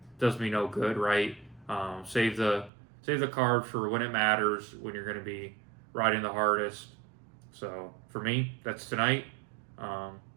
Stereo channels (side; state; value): left; drops out; at 2.7 s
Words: no good, right? Save the carbs for when it matters, when you're going to be riding the hardest. So for me, that's tonight.